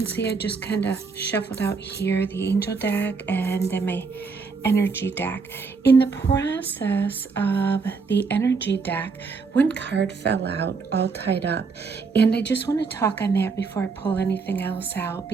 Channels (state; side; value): quieter; left; 4.8 dB